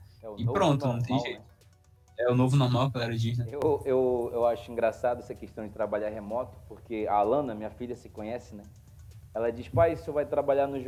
É o e novo pronto, não tem normal, né? jeito. É o novo normal, que a galera diz, né? Eu acho engraçado essa questão de trabalhar remoto, porque a Alana, minha filha, se conhece, né? Ela diz, pai, você vai trabalhar no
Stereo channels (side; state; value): both; identical; correlation 1.00